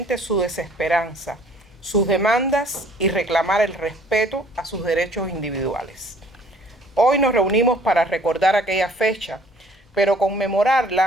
su desesperanza, sus demandas y reclamar el respeto a sus derechos individuales. Hoy nos reunimos para recordar aquella fecha, pero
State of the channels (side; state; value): both; normal; correlation 0.56